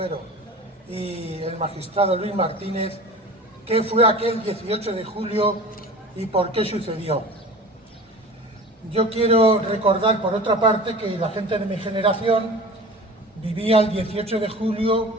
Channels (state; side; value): normal; both; correlation 0.39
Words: y el magistrado Luis Martínez, qué fue aquel 18 de julio y por qué sucedió. Yo quiero recordar, por otra parte, que la gente de mi generación vivía el 18 de